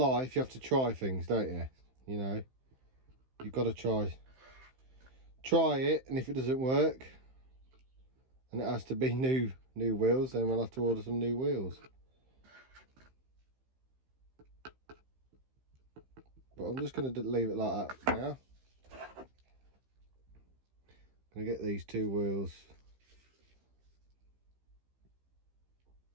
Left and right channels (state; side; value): late; left; 15 ms